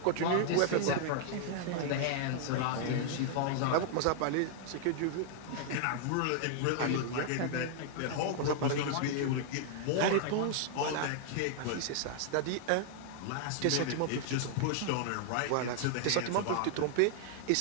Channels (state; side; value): different; both; correlation 0.00